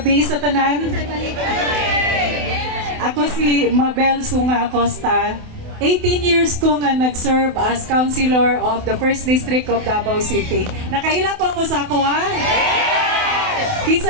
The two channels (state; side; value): late; left; 28 ms